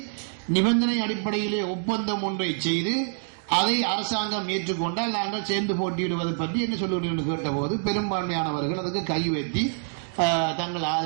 நிபந்தனை அடிப்படையிலே ஒப்பந்தம் ஒன்றை செய்து அதை அரசாங்கம் ஏற்றுக்கொண்டால் நாங்கள் சேர்ந்து போட்டியிடுவது பற்றி என்ன சொல்லுங்கள் என்று கேட்டபோது பெரும்பான்மையானவர்கள் அதுக்கு கை வைத்தி தங்கள்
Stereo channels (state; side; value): silent; left; 61 dB below the other